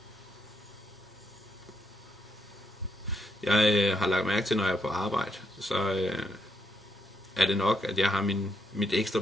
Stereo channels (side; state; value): both; normal; correlation 0.79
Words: Jeg har lagt mærke til, når jeg er på arbejde, så er det nok, at jeg har mit ekstra